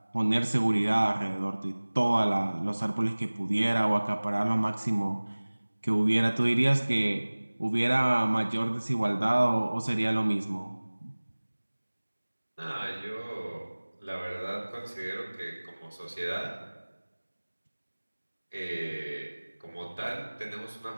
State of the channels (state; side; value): inverted; both; correlation -1.00